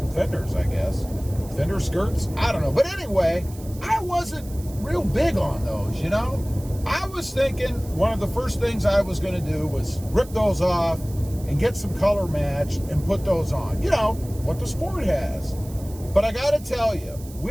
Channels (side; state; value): right; noise; hiss, 20 dB below the sound